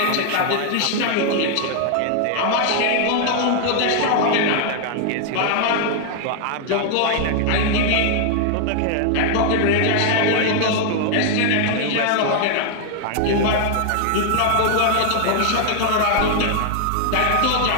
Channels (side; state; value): both; different; correlation 0.00